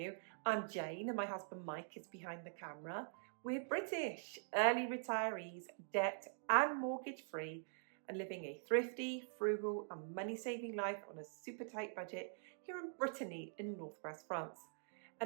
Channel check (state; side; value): silent; left; digital silence